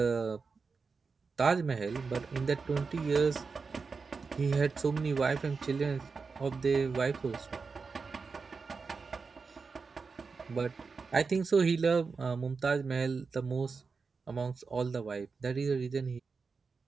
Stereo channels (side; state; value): left; quieter; 4.8 dB